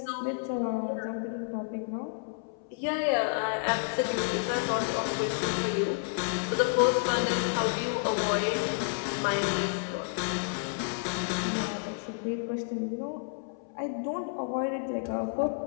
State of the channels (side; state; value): right; silent; 58 dB below the other